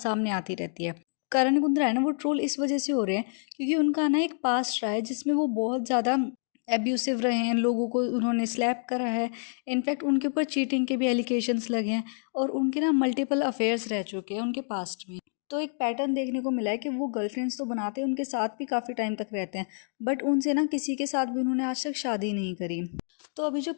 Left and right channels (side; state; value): right; silent; 59 dB below the other